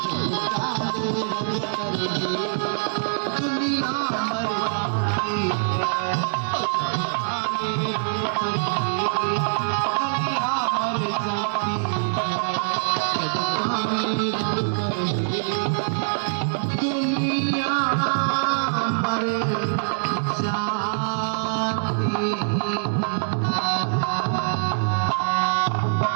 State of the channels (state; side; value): silent; left; digital silence